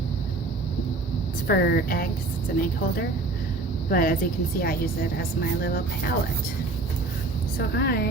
It's for eggs. It's an egg holder. But as you can see, I use it as my little palette. So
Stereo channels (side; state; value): left; quieter; 3.2 dB